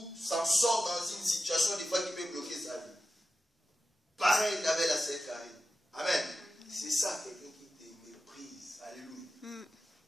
s'en sort dans une situation des fois qui peut bloquer sa vie. Pareil avec la sœur Karine. Amen. C'est ça, quelqu'un qui te méprise. Alléluia.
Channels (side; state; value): both; normal; correlation 0.92